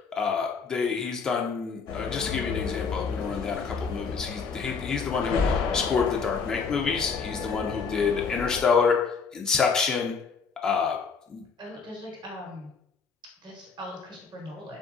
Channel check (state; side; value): quieter; right; 5.4 dB